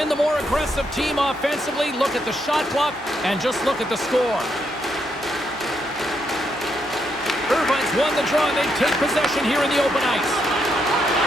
the more aggressive team offensively. Look at the shot clock, and just look at the score. Irvine's won the draw, and they take possession here in the open ice.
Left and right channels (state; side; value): normal; both; correlation 0.78